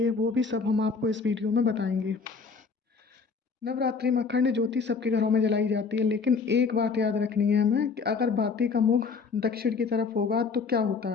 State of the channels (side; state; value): right; quieter; 5.0 dB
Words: वो भी सब हम आपको इस वीडियो में बताएंगे। नवरात्रि में अखंड ज्योति सबके घरों में जलाई जाती है, लेकिन एक बात याद रखनी है हमें कि अगर बाती का मुख दक्षिण की तरफ होगा तो क्या होता